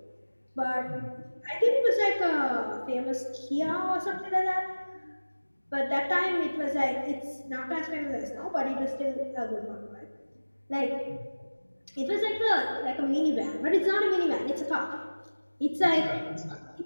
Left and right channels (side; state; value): both; inverted; correlation -1.00